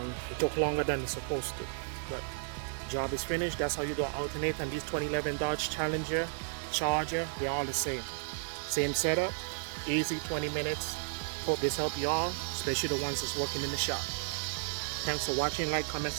it took longer than it's supposed to. But job is finished. That's how you do an alternator. And these 2011 Dodge Challenger, Charger, they're all the same. Same setup, easy 20 minutes. Hope this helped y'all, especially the ones that's working in the shop. Thanks for watching. Like, comment,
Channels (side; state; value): left; silent; digital silence